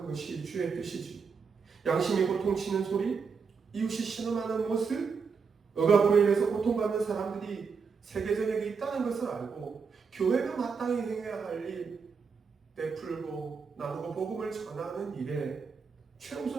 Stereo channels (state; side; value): quieter; left; 5.5 dB